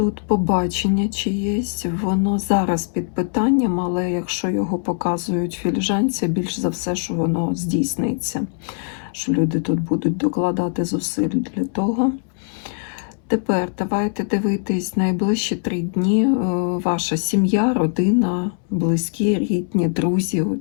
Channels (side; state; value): right; silent; 61 dB below the other